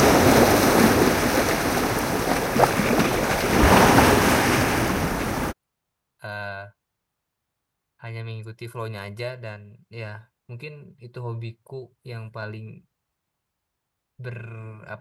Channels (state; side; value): identical; both; correlation 1.00